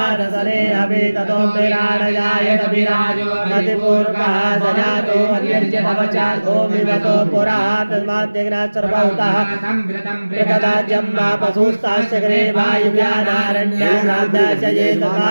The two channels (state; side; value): inverted; both; correlation -1.00